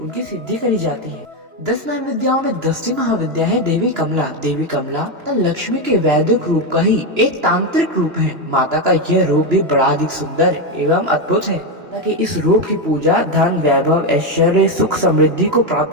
सिद्धि करी जाती है। 10 महाविद्याओं में 10वीं महाविद्या है देवी कमला। देवी कमला लक्ष्मी के वैदिक रूप का ही एक तांत्रिक रूप है। माता का यह रूप भी बड़ा अधिक सुंदर एवं अद्भुत है, ताकि इस रूप की पूजा धन वैभव ऐश्वर्य सुख समृद्धि को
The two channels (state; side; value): late; left; 2.9 ms